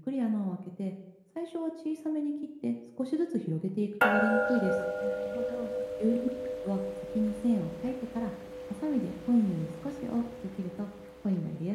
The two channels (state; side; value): identical; both; correlation 1.00